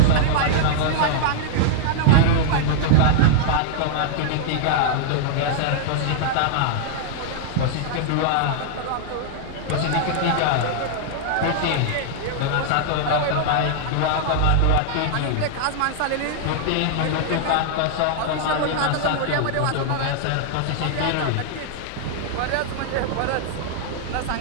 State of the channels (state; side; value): different; both; correlation -0.01